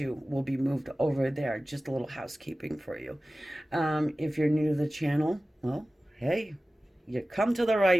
will be moved over there. Just a little housekeeping for you. If you're new to the channel, well, hey, you come to the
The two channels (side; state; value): both; normal; correlation 0.96